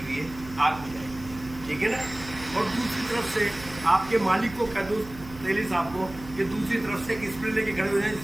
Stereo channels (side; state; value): right; noise; hum, 16 dB below the sound